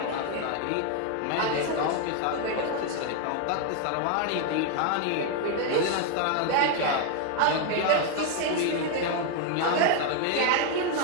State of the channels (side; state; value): both; different; correlation 0.01